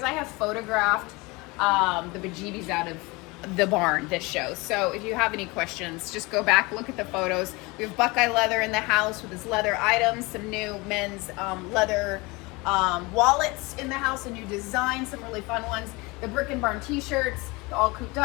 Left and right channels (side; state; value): right; quieter; 24.8 dB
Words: I have photographed the bejeebies out of the barn this show. So if you have any questions, just go back, look at the photos. We have Buckeye leather in the house with his leather items, some new men's leather wallets in the house, a new design, some really fun ones. The Brick and Barn t-shirts, the all cooped